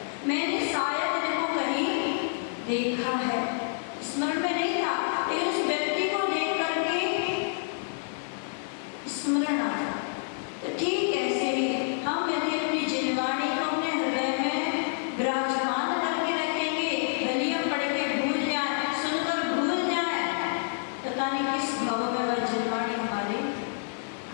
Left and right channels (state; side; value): silent; right; 59 dB below the other